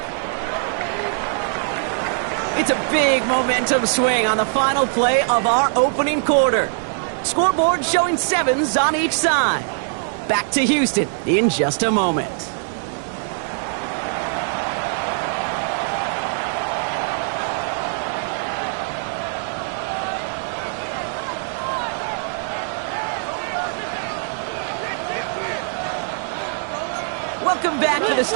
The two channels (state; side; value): silent; left; 64 dB below the other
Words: It's a big momentum swing on the final play of our opening quarter. Scoreboard showing 7s on each side. Back to Houston in just a moment. Welcome back to the